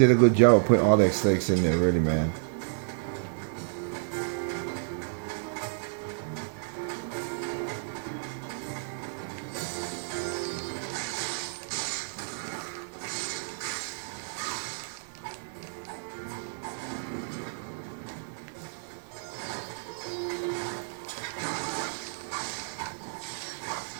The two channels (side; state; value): left; silent; digital silence